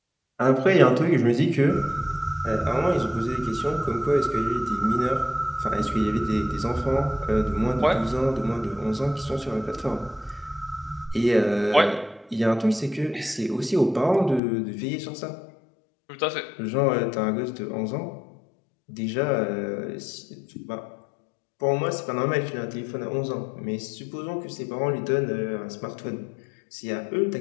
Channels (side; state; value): right; drops out; at 14.4 s